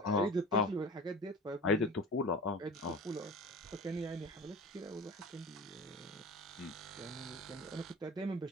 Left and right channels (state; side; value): normal; both; correlation 0.35